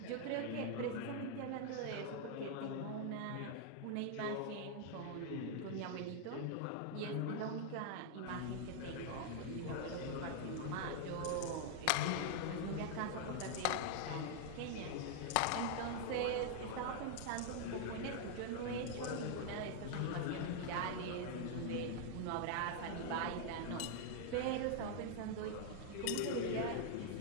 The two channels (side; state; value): both; different; correlation 0.00